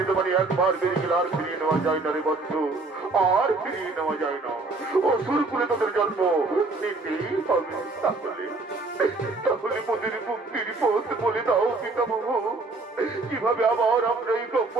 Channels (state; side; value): quieter; left; 3.5 dB